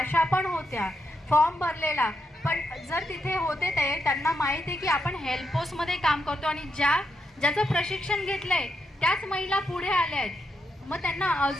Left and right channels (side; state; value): both; normal; correlation 0.82